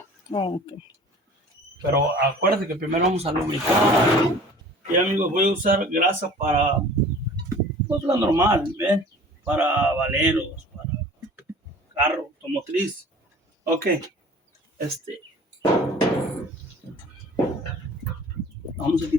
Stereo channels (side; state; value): both; normal; correlation 0.46